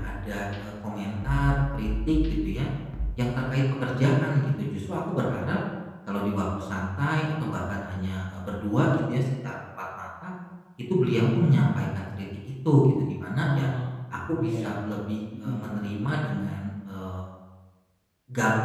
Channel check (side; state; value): both; identical; correlation 1.00